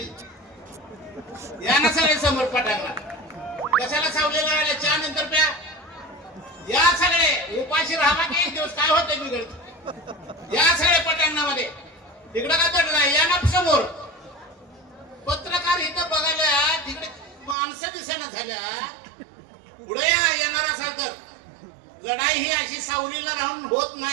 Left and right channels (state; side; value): drops out; left; at 17.6 s